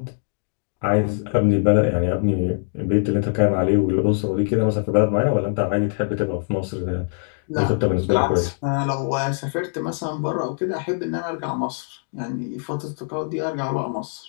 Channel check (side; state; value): right; silent; 64 dB below the other